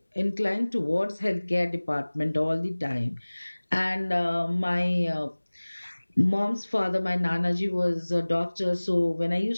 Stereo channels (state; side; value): inverted; both; correlation -1.00